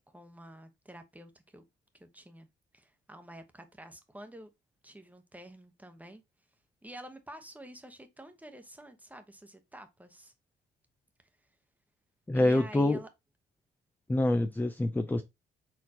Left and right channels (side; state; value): both; normal; correlation 0.94